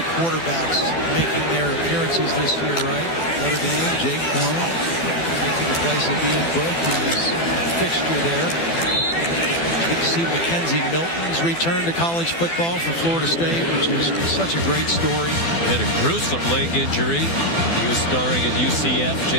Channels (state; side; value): late; right; 12 ms